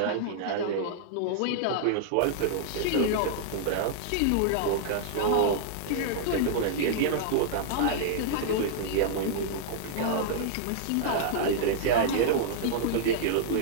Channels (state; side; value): different; both; correlation -0.01